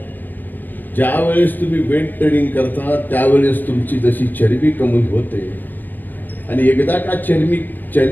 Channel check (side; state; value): right; late; 0.087 ms